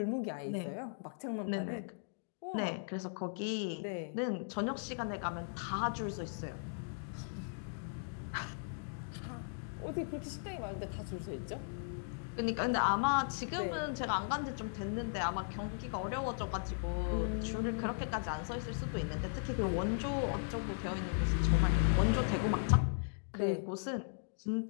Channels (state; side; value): silent; right; digital silence